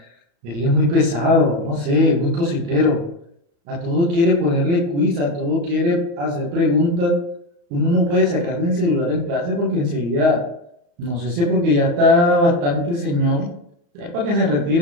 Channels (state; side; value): late; left; 35 ms